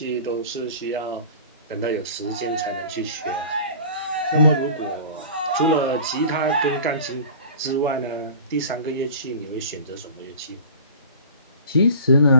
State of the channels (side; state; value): both; inverted; correlation -0.41